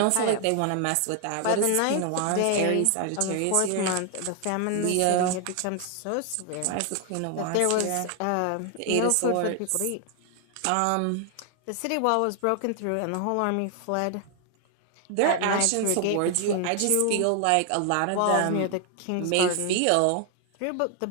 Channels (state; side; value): different; both; correlation 0.00